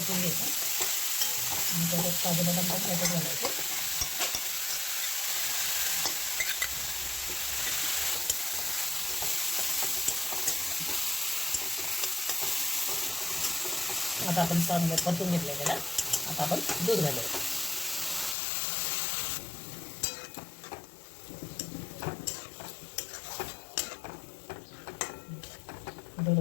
घ्यायचं आणि त्याच्यात काजू बदाम पण त्याच्यात घालायचे। आता आपण चांगलं परतून घेतलं त्याला। आता आपण दूध घालायचं। दूध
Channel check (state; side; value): drops out; right; at 18.4 s